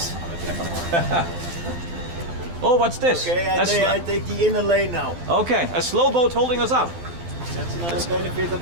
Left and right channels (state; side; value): late; left; 12 ms